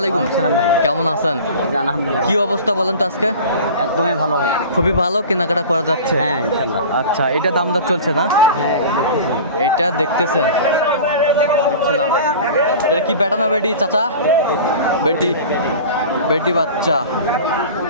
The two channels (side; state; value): both; inverted; correlation -0.38